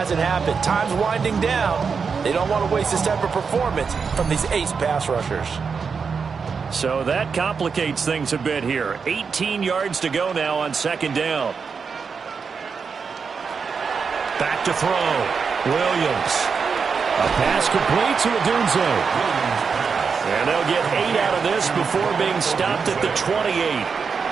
happened. Time's winding down. They don't want to waste this type of performance from these ace pass rushers. So that complicates things a bit here. 18 yards to go now on second down. Back to throw. Williams. A pass complete to Odunze. And they'll get 8 out of this before being stopped at the 28.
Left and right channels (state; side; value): quieter; left; 5.6 dB